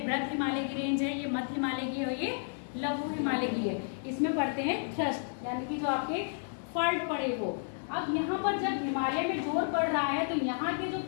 हिमालय की रेंज है, ये मध्य हिमालय की है, ये लघु हिमालय की है। इसमें पढ़ते हैं थ्रस्ट, यानी कि जो आपके फॉल्ट पड़े वो। अब यहाँ पर जब हिमालय में जोर पड़ रहा है तो यहाँ के जो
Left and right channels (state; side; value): silent; right; digital silence